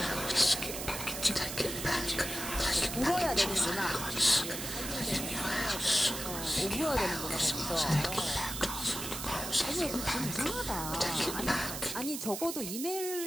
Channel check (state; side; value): noise; right; hiss, 6 dB below the sound